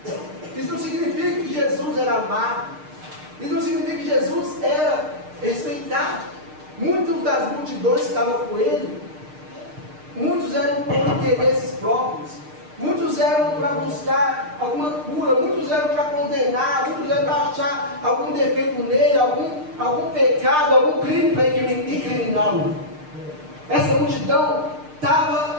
Isso não significa que Jesus era amado. Isso não significa que Jesus era respeitado. Muitas das multidões que estavam com ele, muitos eram por interesses próprios, muitos eram para buscar alguma cura, muitos eram para condenar, muitos eram para achar algum defeito nele, algum pecado, algum crime para incriminá-lo. Essa multidão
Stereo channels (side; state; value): left; late; 6.6 ms